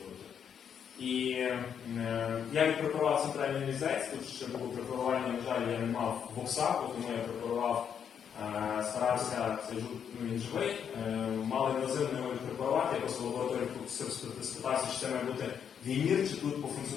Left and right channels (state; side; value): quieter; right; 8.0 dB